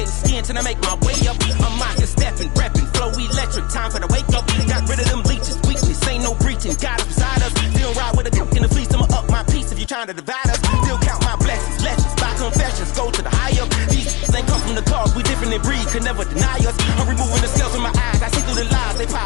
skin till I make my way up. I'm mocking, stepping, repping, flow electric. Time for the wake up. Got rid of them leeches, weakness, ain't no breaching. God is beside us. Still ride with a cook in the fleece. I'ma up my piece if you trying to divide us. Still count my blessings, lessons, by confessions. Go to the high up. These ain't come from the cause, we different in breed, could never deny us. I'm removing the scales from my eyes. I see through the lies they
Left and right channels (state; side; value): quieter; right; 25.9 dB